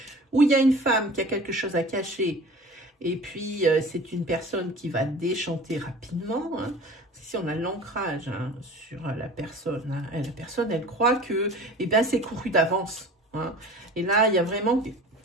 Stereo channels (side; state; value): both; normal; correlation 0.41